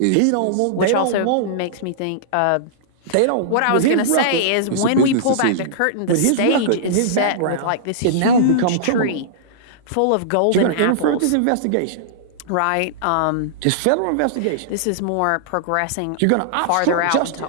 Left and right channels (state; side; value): different; both; correlation -0.02